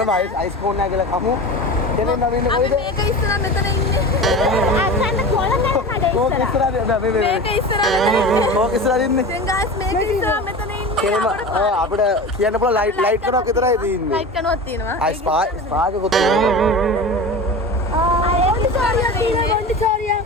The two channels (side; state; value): both; normal; correlation 0.31